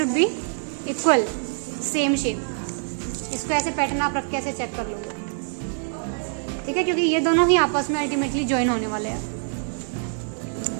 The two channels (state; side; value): silent; left; digital silence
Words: be equal, same shape. इसको ऐसे पैटर्न आप रख के ऐसे चेक कर लोगे, ठीक है? क्योंकि ये दोनों ही आपस में अल्टीमेटली ज्वाइन होने वाले हैं।